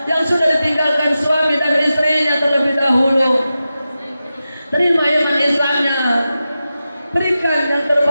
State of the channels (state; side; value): inverted; both; correlation -0.92